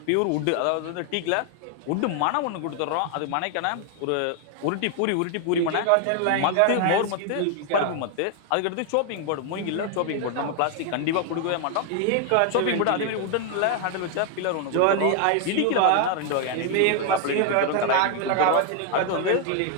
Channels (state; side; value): different; both; correlation 0.00